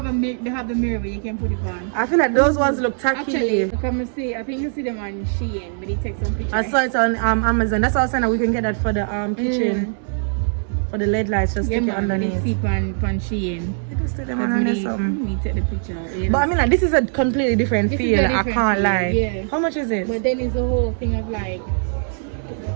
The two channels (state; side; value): silent; left; 65 dB below the other